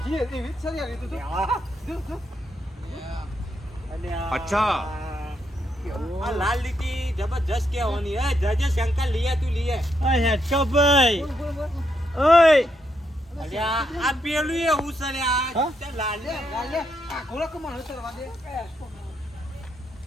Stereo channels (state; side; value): normal; both; correlation 0.79